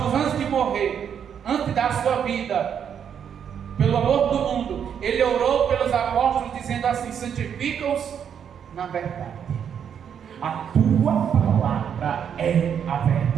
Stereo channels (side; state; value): left; quieter; 8.1 dB